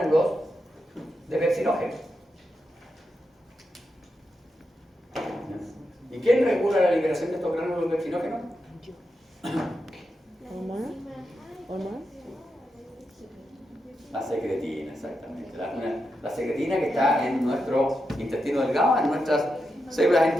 de pepsinógeno. ¿Y quién regula la liberación de estos gránulos de pepsinógeno? ¿Hormona? La secretina, exactamente. La secretina que está en nuestro intestino delgado, en nuestras células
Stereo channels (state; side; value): normal; both; correlation 0.86